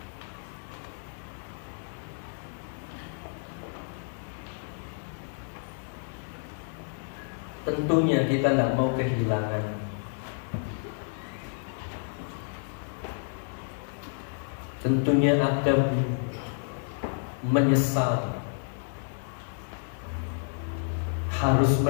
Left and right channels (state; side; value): silent; right; digital silence